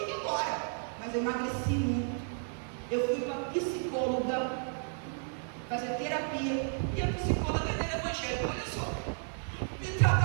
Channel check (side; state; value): left; silent; 56 dB below the other